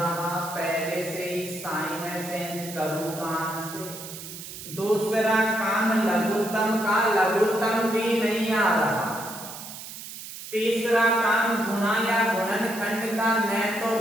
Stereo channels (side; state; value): right; noise; hiss, 11 dB below the sound